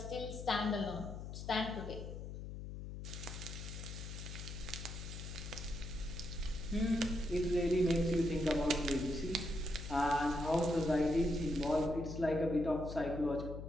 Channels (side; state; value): left; noise; hum, 8 dB below the sound